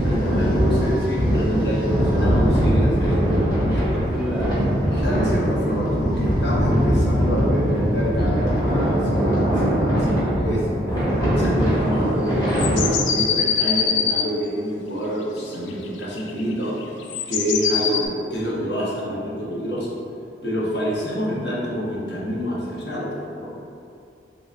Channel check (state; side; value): normal; both; correlation 0.66